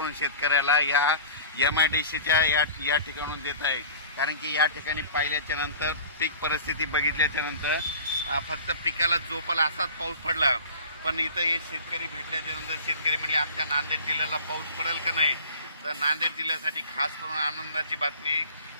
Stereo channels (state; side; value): inverted; both; correlation -0.42